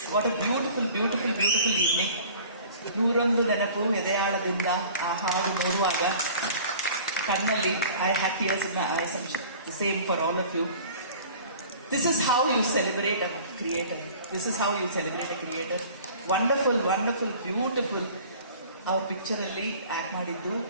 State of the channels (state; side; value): inverted; both; correlation -0.46